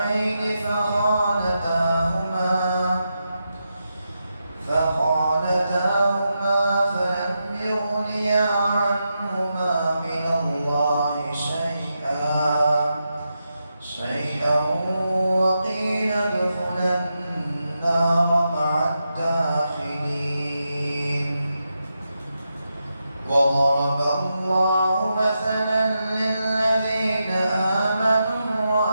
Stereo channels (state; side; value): inverted; both; correlation -0.86